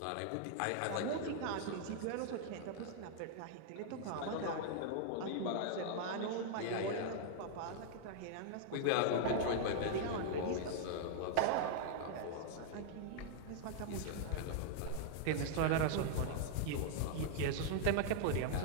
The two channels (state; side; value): different; both; correlation -0.01